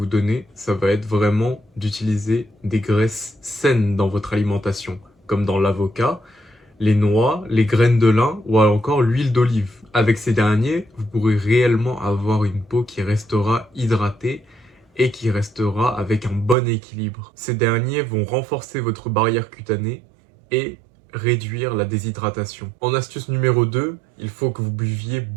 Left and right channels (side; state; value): left; drops out; at 16.6 s